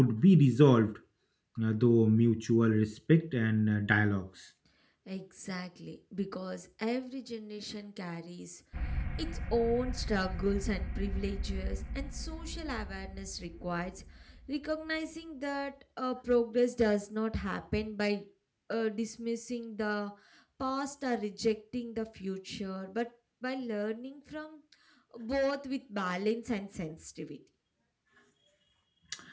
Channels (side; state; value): both; identical; correlation 1.00